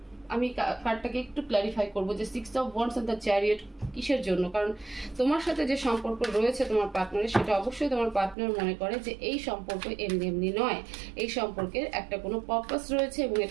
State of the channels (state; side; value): drops out; left; at 8.3 s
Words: আমি কার্ডটাকে একটু ক্ল্যারিফাই করবো যে 6 of Wands and the Chariot কিসের জন্য, কারণ তোমার সাথে যে সম্পর্ক রয়েছে তোমার পার্টনারের, সেটা অবশ্যই তোমার পার্টনার মনে করে যে এই সম্পর্ক এমনি নয়, এই সম্পর্কের একটা কোনো পারপাস রয়েছে এবং